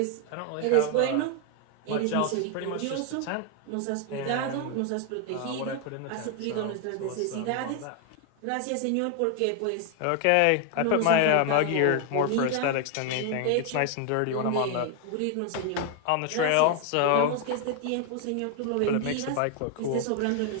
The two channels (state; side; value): different; both; correlation 0.00